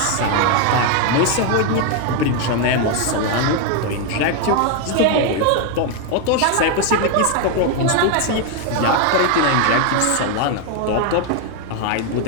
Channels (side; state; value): both; different; correlation 0.01